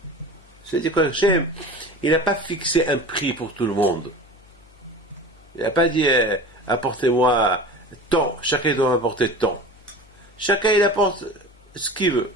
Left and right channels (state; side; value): noise; left; hum, 28 dB below the sound